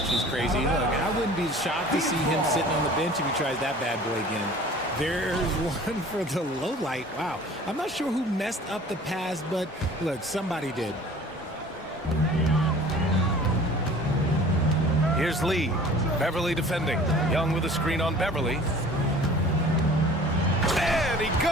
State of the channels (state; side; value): normal; both; correlation 0.46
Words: crazy. Look, I wouldn't be shocked to see him sitting on the bench if he tries that bad boy again. There's one for the low light. Wow. I'm not sure who messed up the pass, but look, somebody did. Here's Lee. Beverly defending. Young with a screen on Beverly. And he